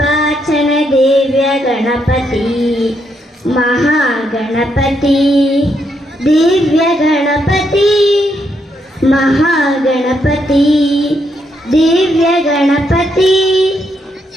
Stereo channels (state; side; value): normal; both; correlation 0.77